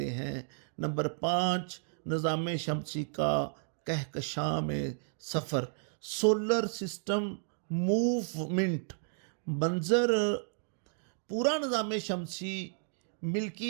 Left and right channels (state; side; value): silent; left; digital silence